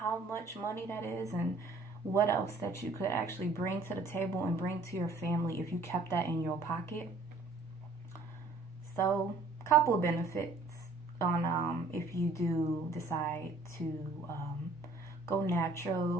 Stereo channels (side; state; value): left; quieter; 3.3 dB